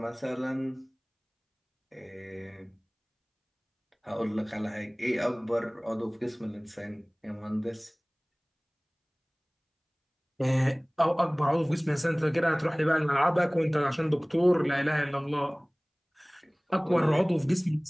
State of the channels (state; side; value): identical; both; correlation 1.00